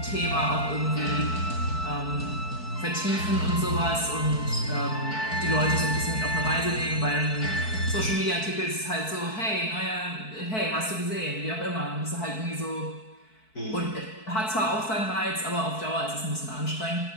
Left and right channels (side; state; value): right; late; 4.6 ms